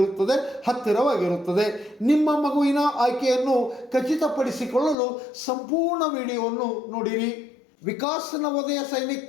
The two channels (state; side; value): drops out; right; at 5.0 s